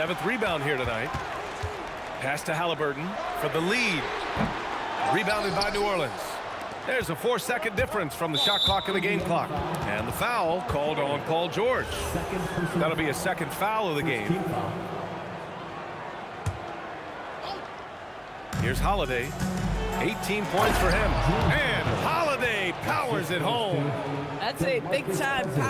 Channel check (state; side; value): identical; both; correlation 1.00